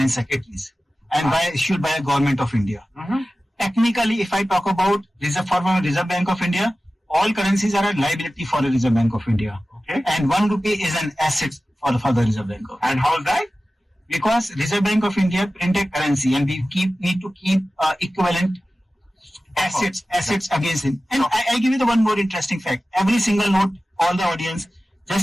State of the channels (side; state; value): both; normal; correlation 0.95